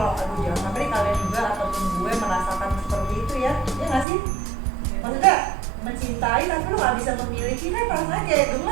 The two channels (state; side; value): drops out; left; at 4.0 s